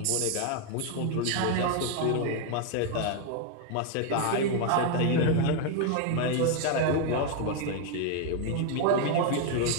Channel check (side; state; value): both; different; correlation 0.01